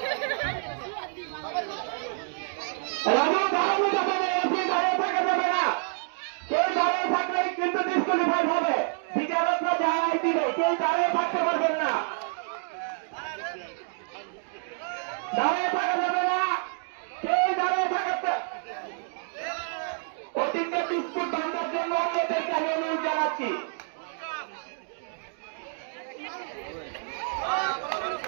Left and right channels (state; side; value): silent; left; 59 dB below the other